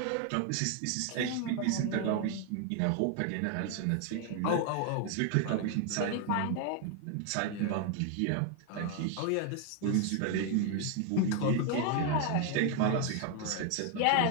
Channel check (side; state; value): both; different; correlation 0.01